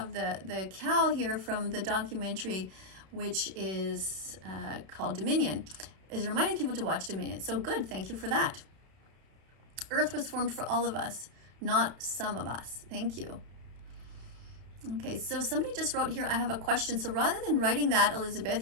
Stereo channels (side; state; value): left; late; 32 ms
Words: the cow here from the documentary, which is called Dominion, is reminding people to watch Dominion. So good, thank you for that. Earth was formed for all of us, not some of us. Thank you. Okay, so somebody just wrote here, I have a question. So rather than writing that, Elizabeth,